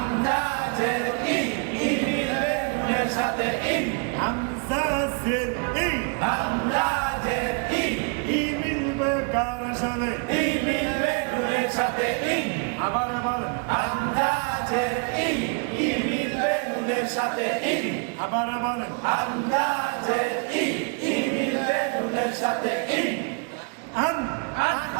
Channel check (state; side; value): quieter; left; 36.0 dB